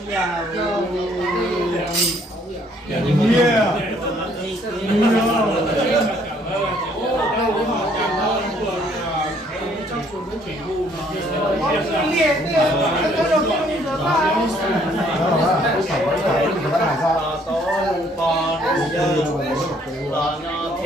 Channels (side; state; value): both; normal; correlation 0.64